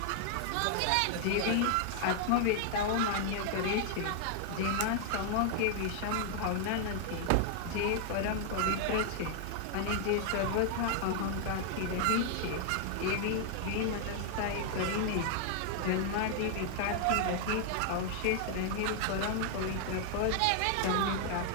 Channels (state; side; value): different; both; correlation 0.00